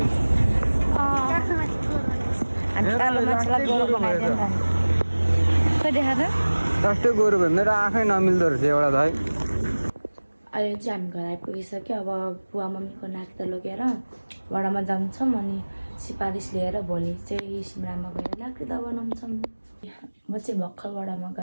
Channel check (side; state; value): both; inverted; correlation -1.00